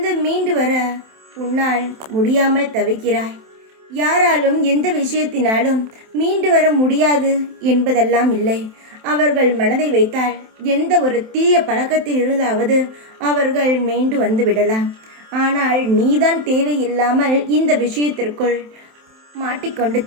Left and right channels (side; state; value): left; late; 27 ms